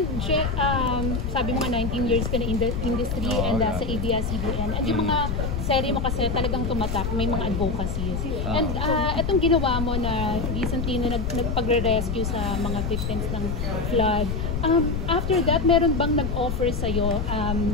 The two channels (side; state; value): left; noise; rumble, 2 dB below the sound